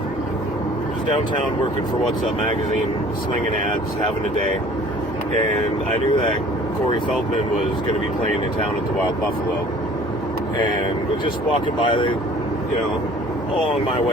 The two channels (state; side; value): normal; both; correlation 0.50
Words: was downtown working for What's Up magazine, slinging ads, having a day, and I knew that Corey Feldman was going to be playing in town at the Wild Buffalo, and was just walking by, along my